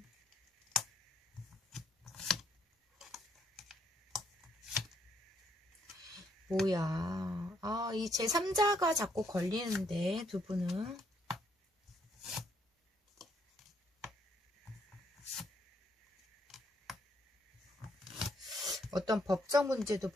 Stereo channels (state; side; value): normal; both; correlation 0.71